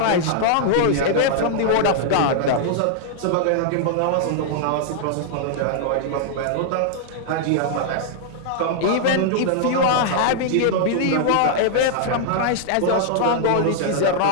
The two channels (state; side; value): different; both; correlation -0.01